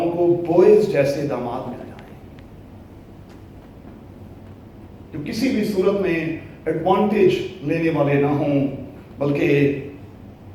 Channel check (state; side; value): identical; both; correlation 1.00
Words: को बोएज जैसे दामाद मिल जाएं, जो किसी भी सूरत में एडवांटेज लेने वाले ना हों, बल्कि